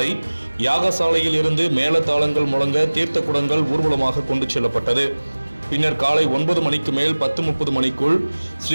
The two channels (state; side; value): inverted; both; correlation -1.00